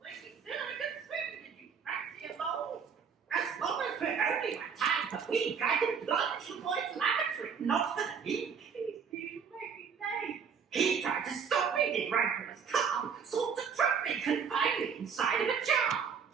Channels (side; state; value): left; quieter; 6.6 dB